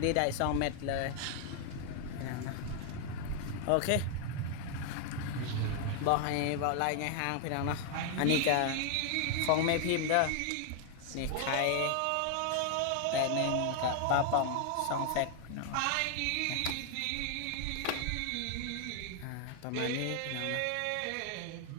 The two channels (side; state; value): both; different; correlation 0.00